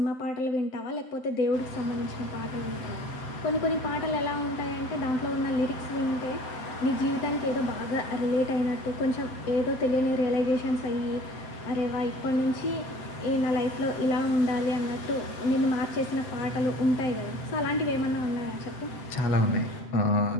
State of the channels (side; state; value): right; late; 7.8 ms